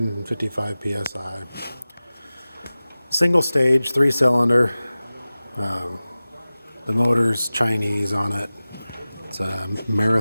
psi. Single stage, 3-cylinder. The motor's Chinese on it. It's a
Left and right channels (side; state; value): both; inverted; correlation -0.97